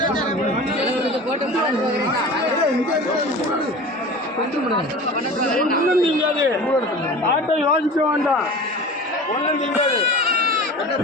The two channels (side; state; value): both; normal; correlation 0.36